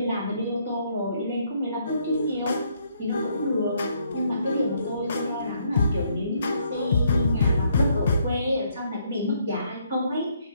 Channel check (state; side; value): inverted; both; correlation -0.70